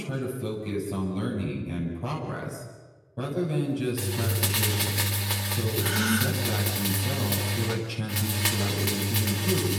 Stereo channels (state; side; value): identical; both; correlation 1.00